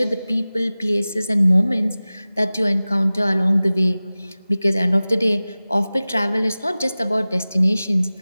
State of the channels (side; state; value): both; inverted; correlation -0.98